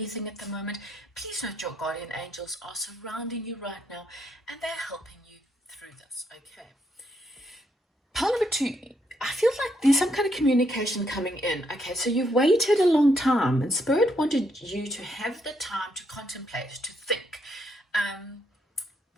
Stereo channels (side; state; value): both; normal; correlation 0.75